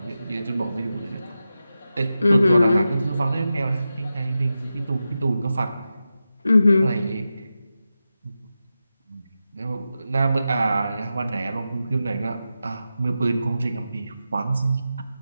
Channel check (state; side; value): inverted; both; correlation -0.91